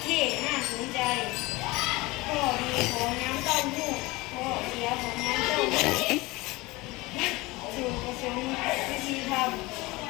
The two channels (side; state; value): right; quieter; 22.0 dB